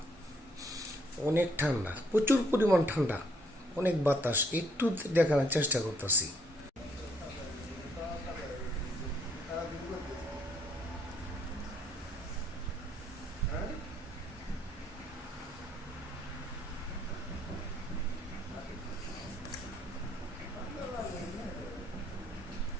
অনেক ঠান্ডা, প্রচুর পরিমাণ ঠান্ডা, অনেক বাতাস। একটু দেখানোর চেষ্টা করতেছি।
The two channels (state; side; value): normal; both; correlation 0.69